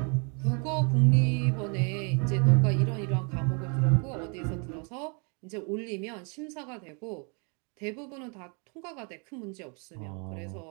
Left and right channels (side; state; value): left; quieter; 36.2 dB